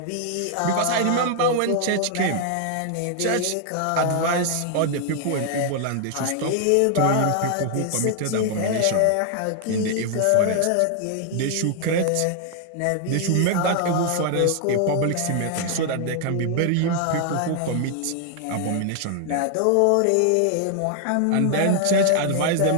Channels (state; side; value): different; both; correlation 0.00